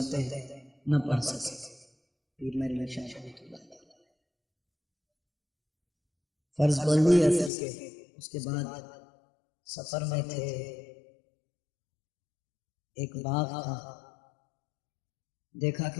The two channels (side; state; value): right; drops out; at 7.5 s